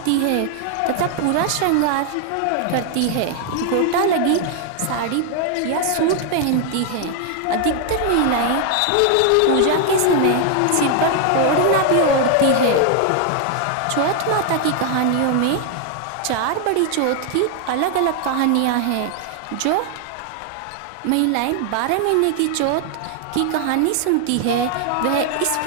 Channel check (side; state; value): both; different; correlation 0.00